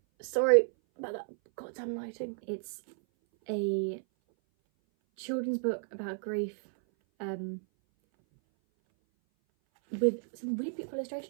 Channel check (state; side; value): silent; left; 56 dB below the other